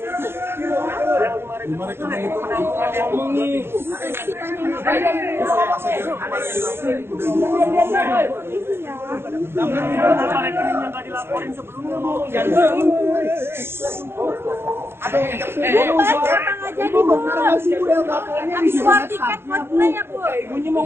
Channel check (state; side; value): late; left; 0.11 ms